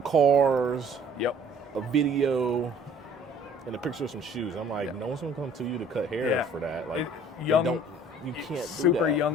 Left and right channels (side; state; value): both; normal; correlation 0.54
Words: cars, Yep. a video, and a picture of some shoes. I'm like, no one's gonna come to you to cut hair for that. Like, you can't do that. Super